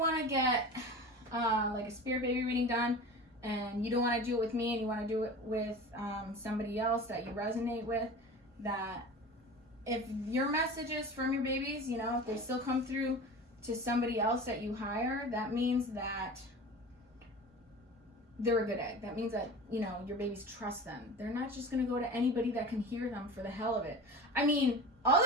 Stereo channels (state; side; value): normal; both; correlation 0.35